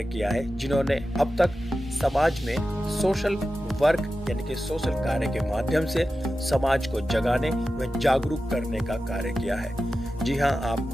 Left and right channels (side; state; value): both; normal; correlation 0.93